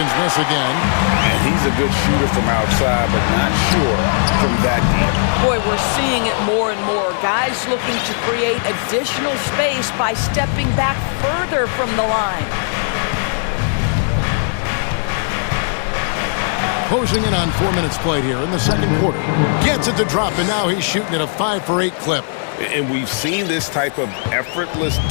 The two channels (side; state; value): right; silent; digital silence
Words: miss again. And he's a good shooter from outside, but not sure from that deep. Boy, we're seeing it more and more. Guys looking to create additional space by stepping back further from the line. Closing in on 4 minutes played here in the second quarter. Gets it to drop, and now he's shooting at a 5-for-8 clip. And we've seen this type of effortless